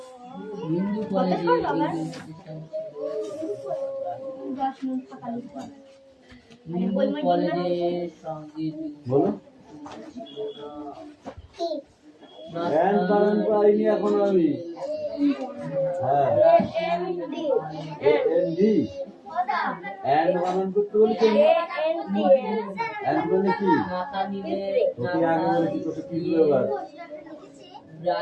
হিন্দু কলেজে হিন্দু কলেজে সঙ্গীত বলো এন্ড বানান পাইনি এখন আমি হ্যাঁ এনডি এন্ড বানান করতে বলছি এন্ড মানে কি মাথা নিলে তোকে আগে বলেছি তোকে কি ব্যাপার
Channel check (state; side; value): identical; both; correlation 1.00